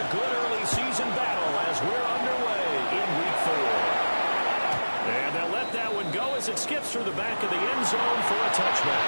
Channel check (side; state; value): both; inverted; correlation -1.00